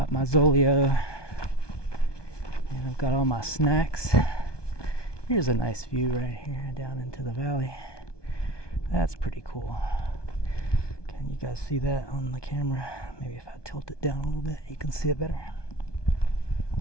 my Zolio, and I've got all my snacks. Here's a nice view right here down into the valley. That's pretty cool. Can you guys see that on the camera? Maybe if I tilt it down a little bit, you can see it better.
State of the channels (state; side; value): late; right; 1.2 ms